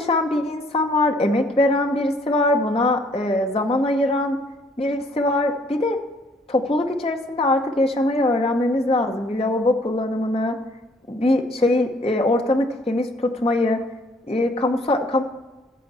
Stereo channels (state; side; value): normal; both; correlation 0.62